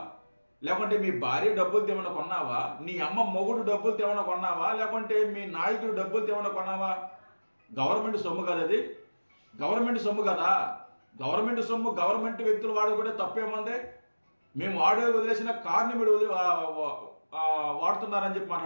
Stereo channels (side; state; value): both; inverted; correlation -1.00